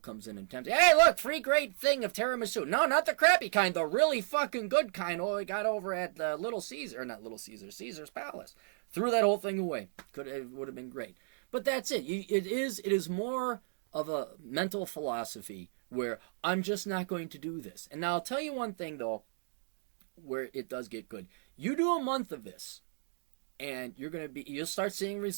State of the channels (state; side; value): silent; left; digital silence